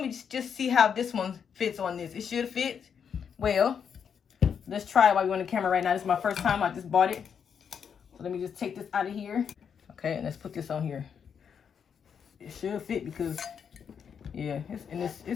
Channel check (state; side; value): quieter; right; 7.2 dB